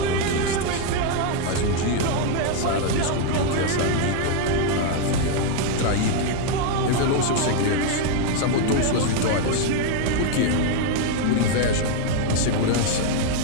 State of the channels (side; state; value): both; different; correlation 0.01